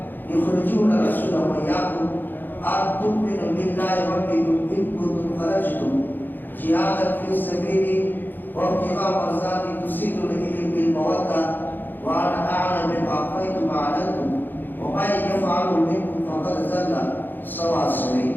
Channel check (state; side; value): late; right; 0.090 ms